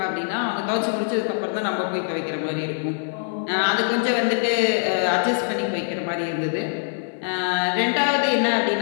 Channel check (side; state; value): right; silent; 59 dB below the other